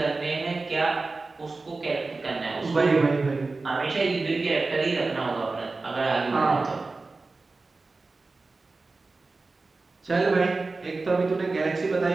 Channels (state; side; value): quieter; left; 3.7 dB